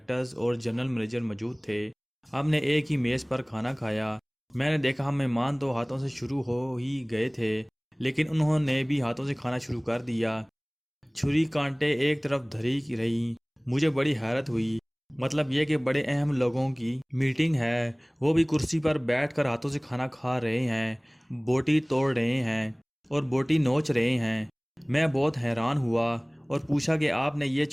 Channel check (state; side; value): identical; both; correlation 1.00